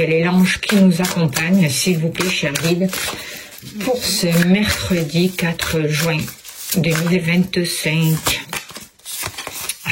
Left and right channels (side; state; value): both; identical; correlation 1.00